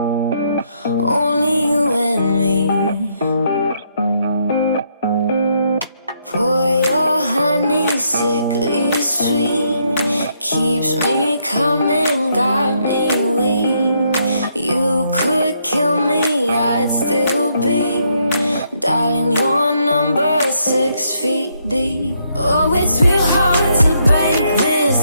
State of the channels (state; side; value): inverted; both; correlation -0.74